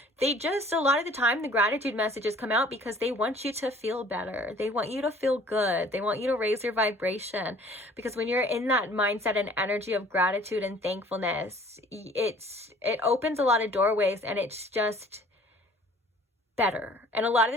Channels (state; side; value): normal; both; correlation 0.53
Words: They just, a lot of the time, the gratitude messages come out because they want you to feel better. They want you to feel good. They want you to raise your vibration. Because when you're in that mindset and energy of gratitude and thankfulness, it opens a lot of doorways, and it's just better. And a lot of